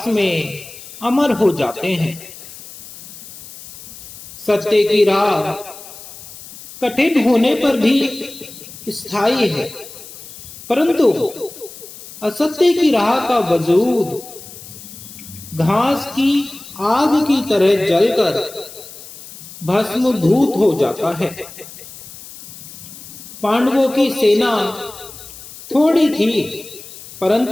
में अमर हो जाते हैं। सत्य की राह कठिन होने पर भी स्थायी है, परंतु असत्य की राह का वजूद घास की आग की तरह जलकर भस्मभूत हो जाता है। पांडवों की सेना थोड़ी थी,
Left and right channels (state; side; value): noise; left; hiss, 16 dB below the sound